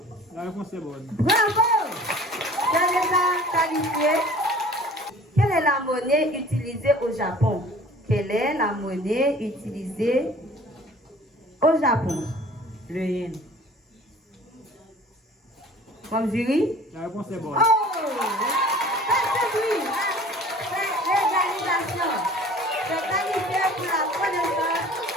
La réponse est bonne. Bravo! Quel est la qualifié? Quelle est la monnaie utilisée au Japon? Quelle est la monnaie utilisée au Japon? Le yen. Bon, jury? La réponse est bonne. Oh! C'est oui! C'est l'égalisation. C'est qualifié pour la connaissance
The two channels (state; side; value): normal; both; correlation 0.47